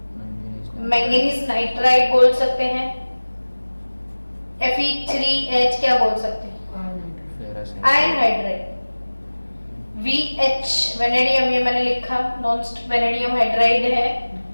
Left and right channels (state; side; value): inverted; both; correlation -1.00